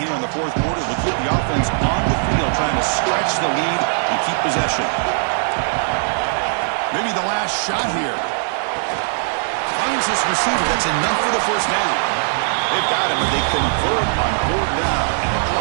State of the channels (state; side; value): silent; left; digital silence